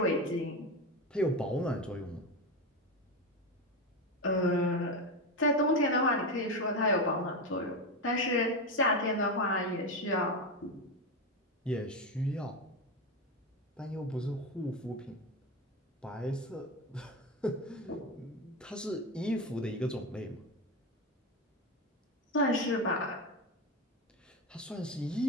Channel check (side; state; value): both; normal; correlation 0.16